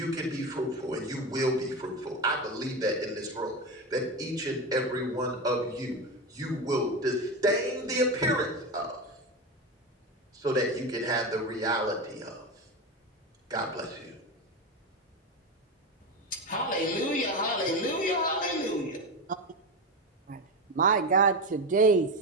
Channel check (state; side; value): normal; both; correlation 0.18